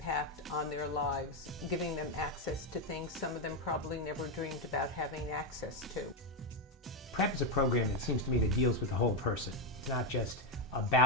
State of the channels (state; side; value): normal; both; correlation 0.05